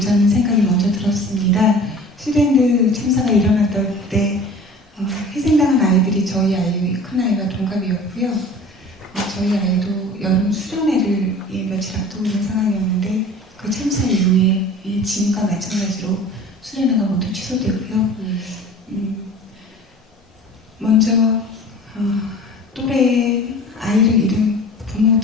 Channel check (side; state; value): both; normal; correlation 0.43